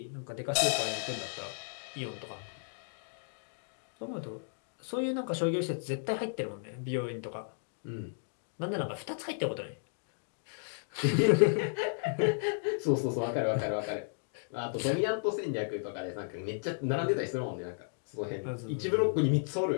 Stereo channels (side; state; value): right; silent; digital silence